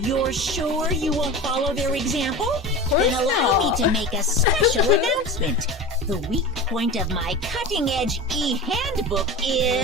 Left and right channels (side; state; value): both; normal; correlation 0.30